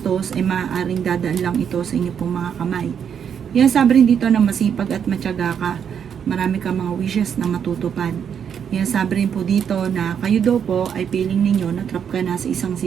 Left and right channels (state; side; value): quieter; left; 7.9 dB